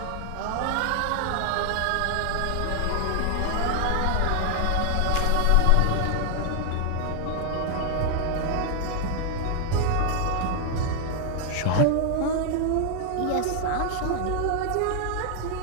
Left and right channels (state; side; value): different; both; correlation 0.00